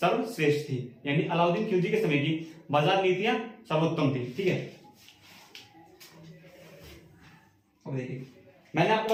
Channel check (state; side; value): identical; both; correlation 1.00